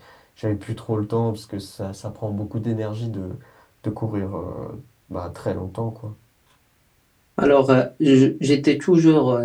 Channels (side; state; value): both; identical; correlation 1.00